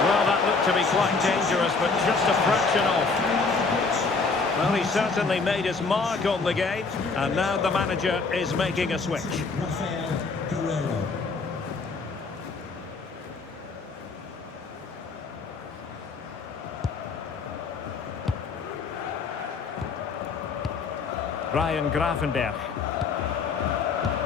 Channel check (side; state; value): right; quieter; 4.4 dB